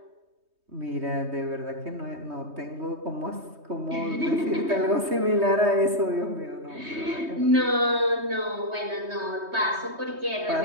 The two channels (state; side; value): late; left; 3.2 ms